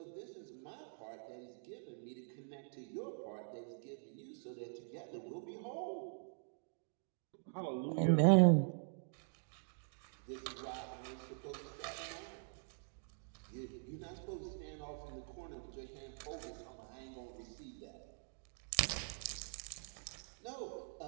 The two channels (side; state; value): left; silent; digital silence